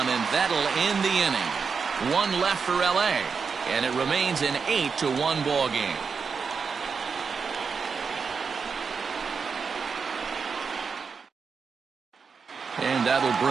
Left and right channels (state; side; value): quieter; left; 5.5 dB